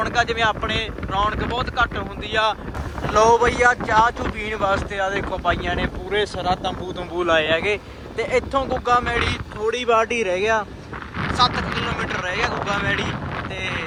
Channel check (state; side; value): identical; both; correlation 1.00